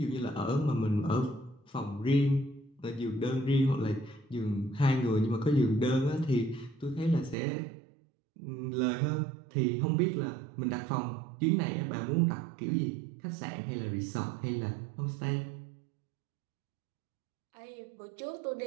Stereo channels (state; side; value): drops out; left; at 7.4 s